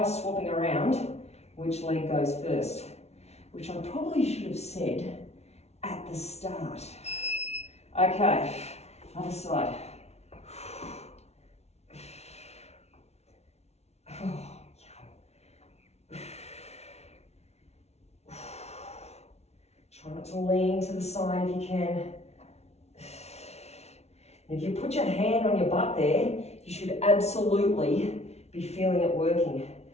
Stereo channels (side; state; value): right; late; 0.31 ms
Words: swapping around which leg goes first, which I probably should have said at the start. Okay, other side. Try not to lean to the side if you can. If you put your hand on your butt there, you should absolutely be feeling it working.